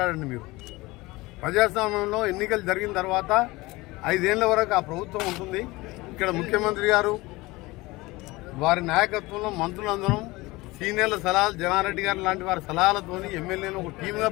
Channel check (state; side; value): quieter; right; 21.3 dB